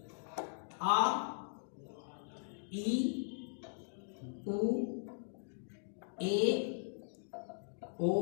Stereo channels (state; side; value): silent; right; digital silence